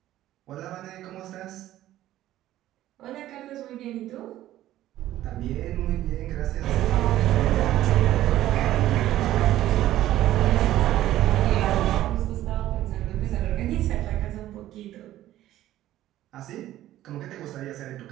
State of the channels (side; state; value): left; quieter; 13.9 dB